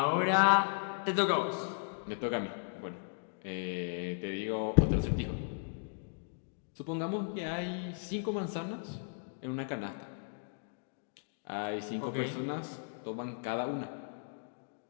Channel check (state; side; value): silent; right; digital silence